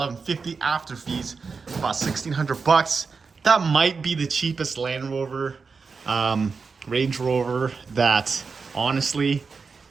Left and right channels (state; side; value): quieter; left; 4.9 dB